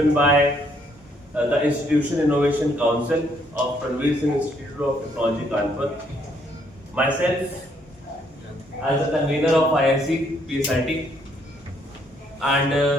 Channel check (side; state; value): both; normal; correlation 0.69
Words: by the Institution Innovation Council of Ranveer Singh Institute of Technology, Kanpur. Myself as a convener of IIC PSIT,